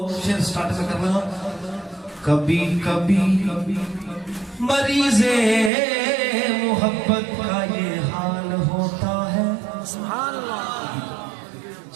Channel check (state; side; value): drops out; left; at 5.7 s